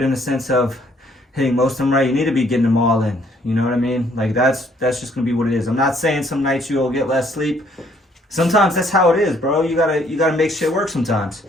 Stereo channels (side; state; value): both; normal; correlation 0.64